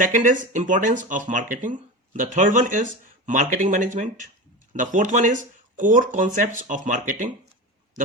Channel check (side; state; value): both; normal; correlation 0.26